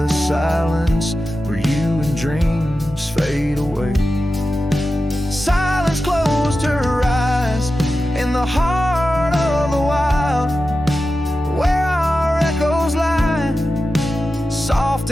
silence where you and dreams fade away. Silence closed her eyes in the heart of the wild, where our echoes lie, soft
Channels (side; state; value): both; normal; correlation 0.93